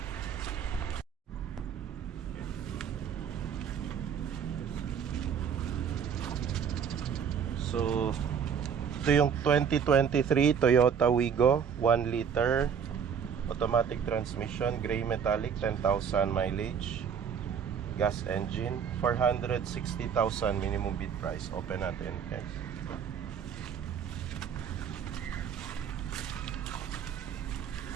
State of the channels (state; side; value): quieter; left; 7.4 dB